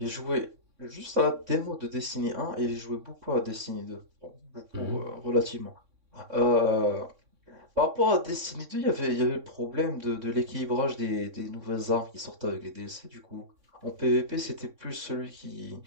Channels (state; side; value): late; left; 3.6 ms